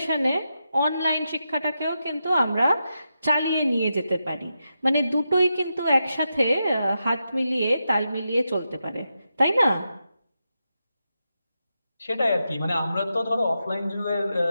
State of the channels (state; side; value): inverted; both; correlation -0.87